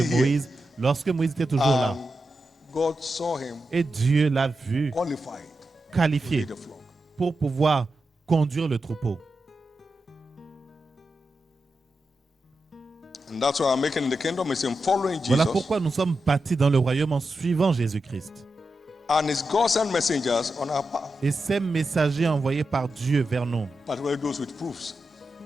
was here. Moïse lorsque Moïse était toujours là. And God saw him Et Dieu l'a vu qualified to qualifié lead the flock. pour pouvoir conduire le troupeau. And that's why I'm making in the kingdom is in following Voilà Jesus pourquoi nous sommes bâtis dans le royaume en suivant Jésus-Christ. and his God sent messengers on our path, Et ces messagers envoyés par Dieu vers nous, particularly those with proofs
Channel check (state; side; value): normal; both; correlation 0.89